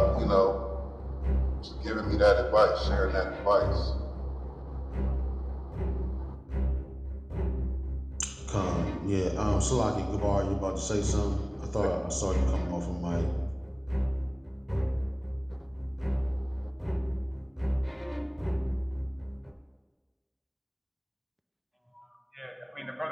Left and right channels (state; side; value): identical; both; correlation 1.00